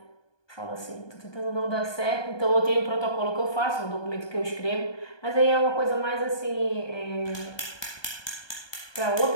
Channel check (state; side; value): late; right; 1.2 ms